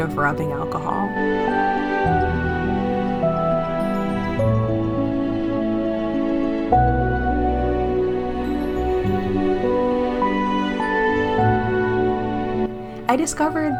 rubbing alcohol. I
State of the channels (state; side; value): identical; both; correlation 1.00